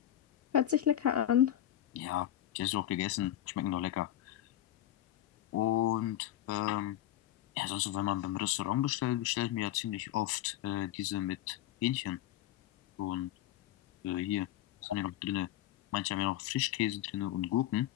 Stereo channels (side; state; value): right; quieter; 12.7 dB